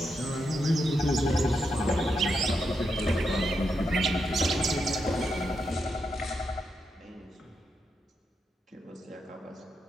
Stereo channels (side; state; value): both; normal; correlation 0.83